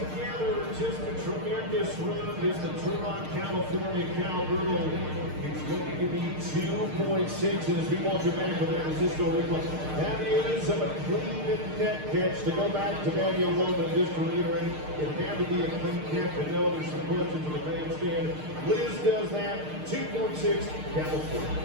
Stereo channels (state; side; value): late; left; 6.5 ms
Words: just a tremendous run. This is the Turlock, California Cowgirl. It's going to be 2.6. And as we watch it back with that Francisco replay, that is a clean net catch. To go back to Daniel Loman, just to reiterate, it had to be a clean catch. I know there's some questions in the bandstand. Liz does that. 2.6,